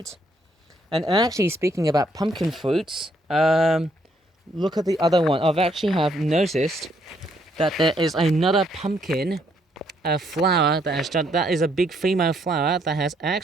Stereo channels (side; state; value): both; normal; correlation 0.71